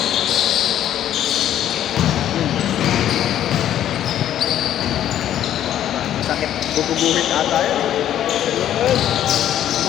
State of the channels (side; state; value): right; quieter; 11.2 dB